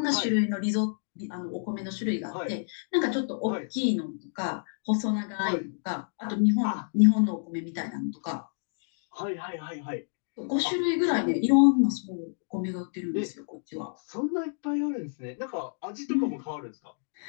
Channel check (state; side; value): silent; right; digital silence